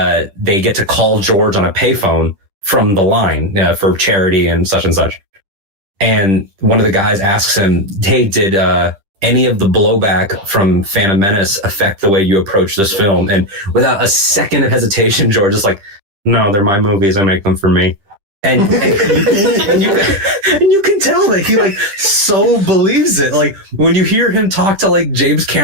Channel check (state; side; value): late; left; 10 ms